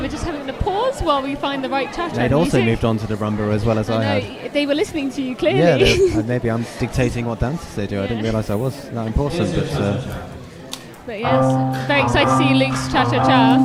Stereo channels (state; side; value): identical; both; correlation 1.00